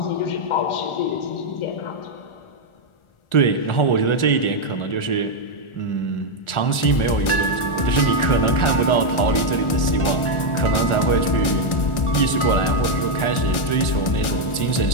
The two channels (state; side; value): late; right; 1.4 ms